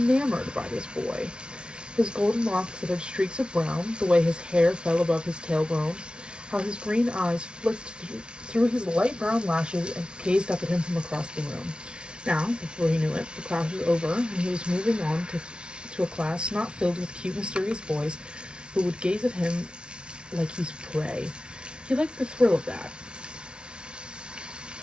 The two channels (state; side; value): late; left; 0.056 ms